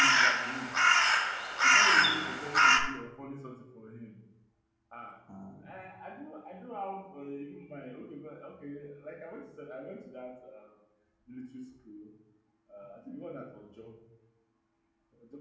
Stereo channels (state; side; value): identical; both; correlation 1.00